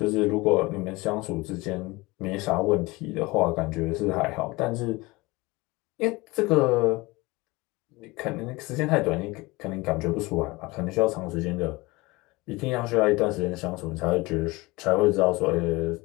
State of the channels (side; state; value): right; quieter; 22.8 dB